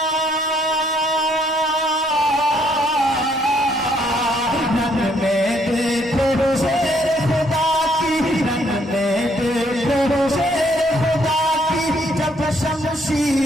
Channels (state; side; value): normal; both; correlation 0.68